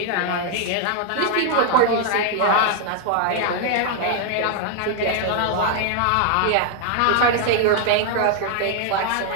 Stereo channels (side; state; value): both; different; correlation 0.00